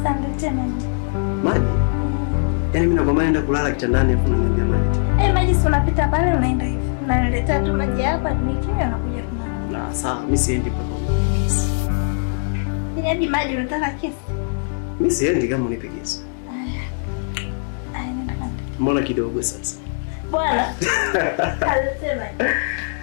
maji. Maji? Yaani mimi nakwambia naenda kulala kitandani hapo unaniambia maji. Maji si unapita pale unaenda hivi. Unaniletea tu maji hapa nikinywa na kuja kulala. Na sawa, mimi siendi pale. Ni maji unataka kesi? Mimi siendi kama unipe kesi. Nenda kanda. Mbona kidogo sasa? Bwana. Kaniletea maji.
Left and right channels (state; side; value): silent; right; digital silence